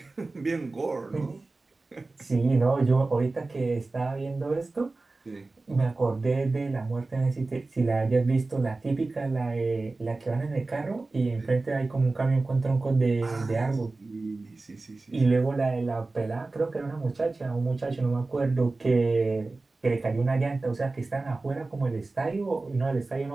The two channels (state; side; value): quieter; left; 3.4 dB